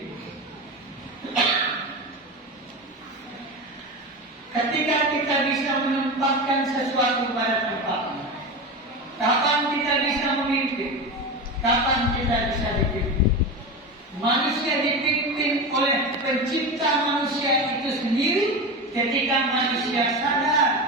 Ketika kita bisa menempatkan sesuatu pada tempatnya, kapan kita bisa memimpin? Kapan kita bisa dipimpin? Manusia dipimpin oleh pencipta manusia itu sendiri ketika manusia sadar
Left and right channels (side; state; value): both; normal; correlation 0.23